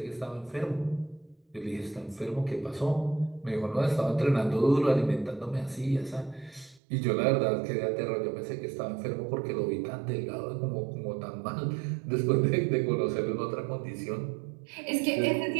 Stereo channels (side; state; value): left; drops out; at 6.8 s